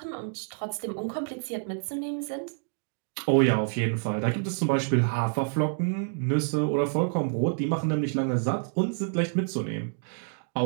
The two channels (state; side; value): silent; left; digital silence